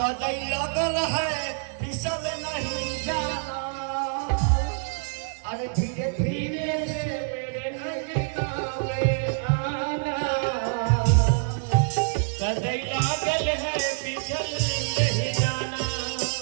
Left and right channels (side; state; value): left; silent; digital silence